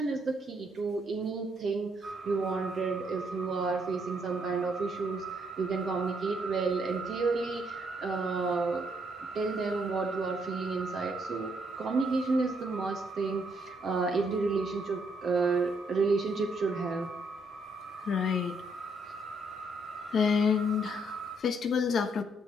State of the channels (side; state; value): both; normal; correlation 0.72